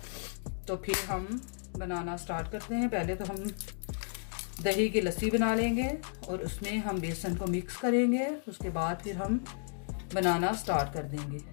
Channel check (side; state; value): right; silent; digital silence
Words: तो फिर हम बनाना स्टार्ट करते हैं। पहले तो हम दही की लस्सी बना लेंगे और उसमें हम बेसन को मिक्स करेंगे। उसके बाद फिर हम बनाना स्टार्ट कर देंगे।